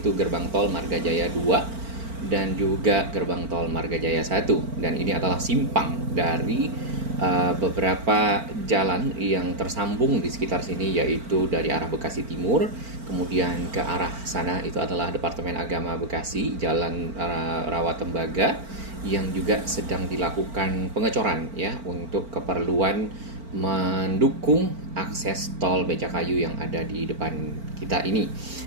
gerbang tol Margajaya 2 dan juga gerbang tol Margajaya 1. Dan ini adalah simpang dari beberapa jalan yang tersambung di sekitar sini, yaitu dari arah Bekasi Timur, kemudian ke arah sana itu adalah Departemen Agama Bekasi, Jalan Rawatembaga, yang juga sedang dilakukan pengecoran ya untuk keperluan mendukung akses tol Becakayu yang ada di depan kita ini.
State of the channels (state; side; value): late; left; 4.4 ms